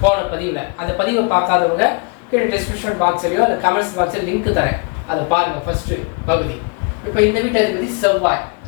போன பதிவில். அந்த பதிவை பார்க்காதவங்க கீழே டிஸ்கிரிப்ஷன் பாக்ஸ்லையோ இல்லை கமெண்ட்ஸ் பாக்ஸில் லிங்க் தரேன், அதை பாருங்க. ஃபர்ஸ்ட் பகுதி. இப்போ இந்த வீட்டு அதிபதி செவ்வாய்.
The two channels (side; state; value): right; quieter; 34.2 dB